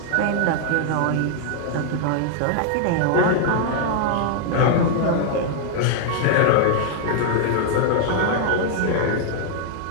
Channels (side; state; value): both; different; correlation 0.00